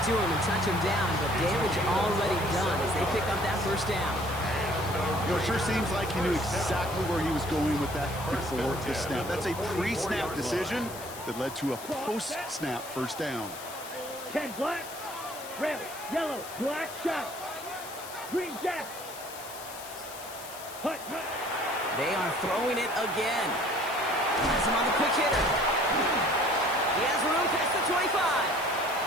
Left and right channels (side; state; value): left; noise; hiss, 13 dB below the sound